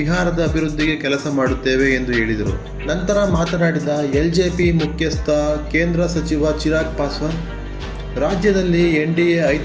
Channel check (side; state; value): both; identical; correlation 1.00